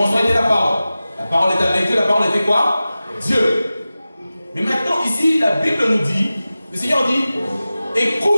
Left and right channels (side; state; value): both; inverted; correlation -0.95